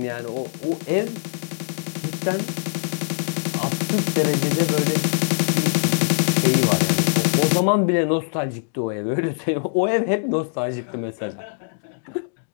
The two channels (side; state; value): right; silent; digital silence